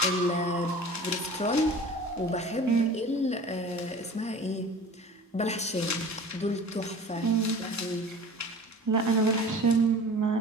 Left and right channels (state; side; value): normal; both; correlation 0.41